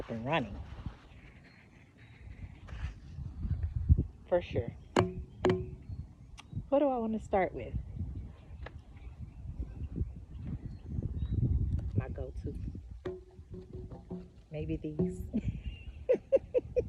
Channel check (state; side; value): identical; both; correlation 1.00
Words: and running. For sure. What do I want to start with? My go-to. Maybe these.